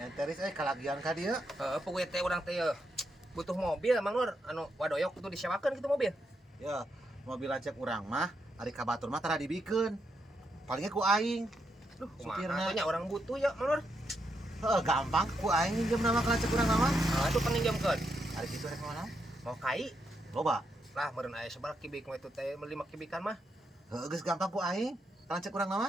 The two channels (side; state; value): both; normal; correlation 0.80